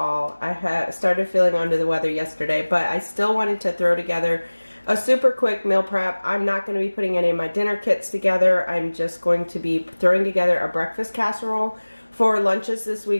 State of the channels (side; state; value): both; inverted; correlation -1.00